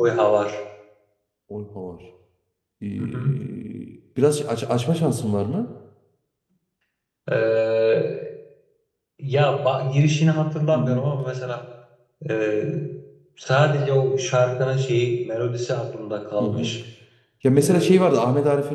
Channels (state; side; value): identical; both; correlation 1.00